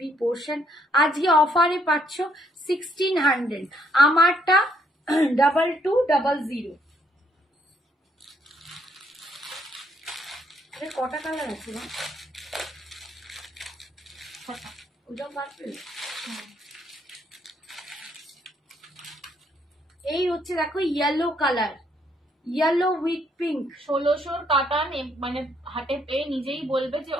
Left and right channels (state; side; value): normal; both; correlation 0.71